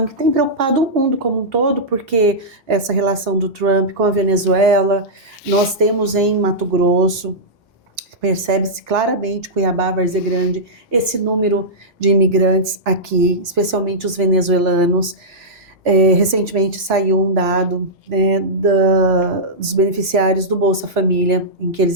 que tem preocupado o mundo como um todo, porque essa relação do Trump com a Venezuela, nós temos em Mato Grosso, percebe-se claramente, Cuiabá, Várzea Grande, esse número de imigrantes aqui, especialmente os venezuelanos. Recentemente saiu um dado, né, dos beneficiários do Bolsa Família, em que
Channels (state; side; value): normal; both; correlation -0.12